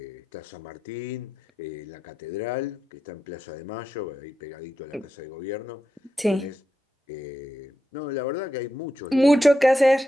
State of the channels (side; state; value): both; normal; correlation 0.87